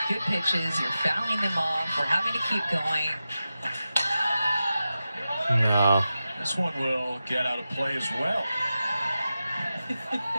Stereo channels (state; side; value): inverted; both; correlation -0.92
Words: good pitches. You're fouling them off. We're having to keep going. No. This one will get out of play as well.